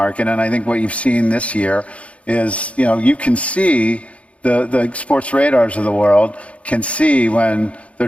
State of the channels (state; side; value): late; right; 0.063 ms